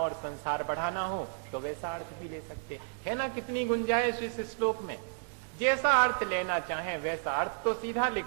संसार बढ़ाना हो तो वैसा अर्थ भी ले सकते है ना। कितनी गुंजाइश इस श्लोक में, जैसा अर्थ लेना चाहें वैसा अर्थ तो सीधा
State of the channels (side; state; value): left; silent; digital silence